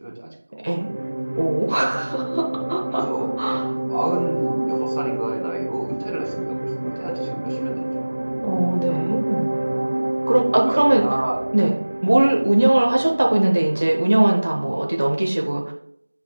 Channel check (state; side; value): inverted; both; correlation -1.00